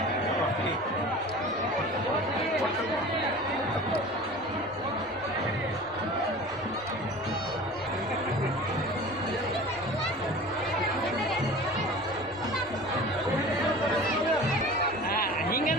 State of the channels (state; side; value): normal; both; correlation 0.39